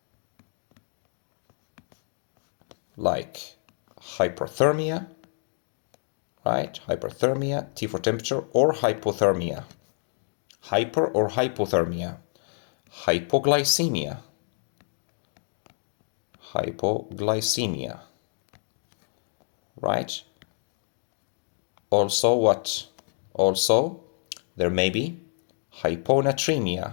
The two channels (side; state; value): right; silent; digital silence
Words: Like hyperthermia, right? Hyperthermia, T for temperature, or hypothermia. Hyper or hypothermia. Hypoglycemia. Right? Also what? Also, there may be